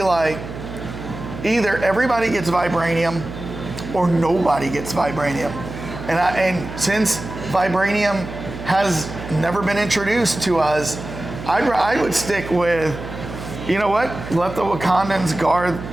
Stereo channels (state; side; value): noise; right; hum, 10 dB below the sound